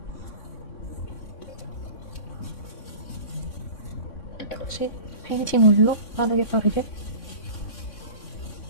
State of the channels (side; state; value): right; late; 3.6 ms